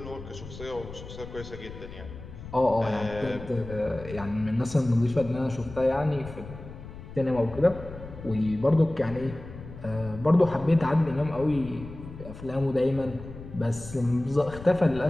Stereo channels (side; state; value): left; noise; rumble, 14 dB below the sound